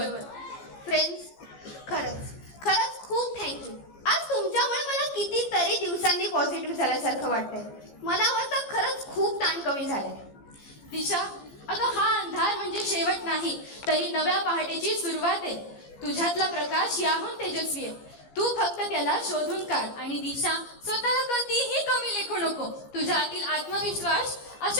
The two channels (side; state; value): right; late; 15 ms